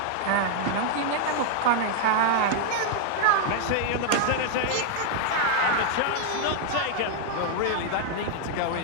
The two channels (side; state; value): both; different; correlation 0.00